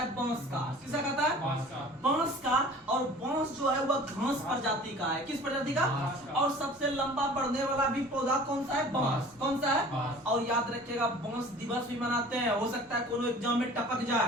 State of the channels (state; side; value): normal; both; correlation 0.45